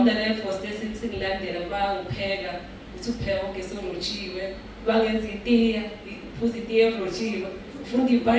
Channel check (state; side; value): identical; both; correlation 1.00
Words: force singilandela bangipheka ukuthi upheka ugesi orojiwe, bangenza itiya, uphuza itiya erojiwe, ufunda